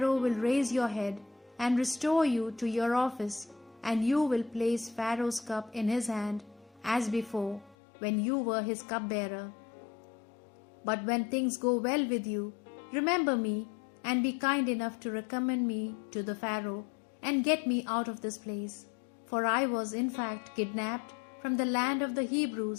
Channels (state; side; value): drops out; right; at 7.8 s